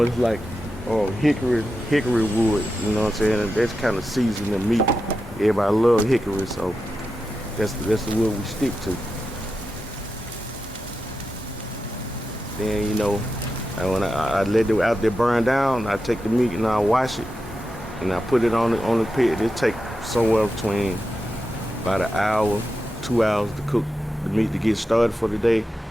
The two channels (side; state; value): both; normal; correlation 0.89